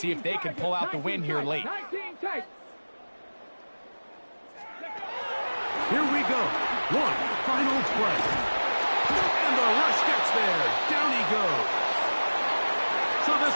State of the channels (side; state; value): both; inverted; correlation -1.00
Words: if they can pull out the win here late. 19 tight. Here we go. One final play. And the rush gets there. Down he goes. So this